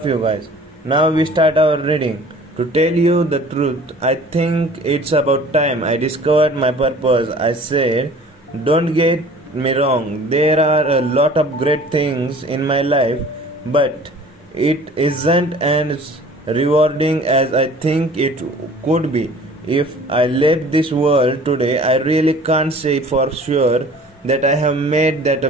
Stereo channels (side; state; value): both; normal; correlation 0.47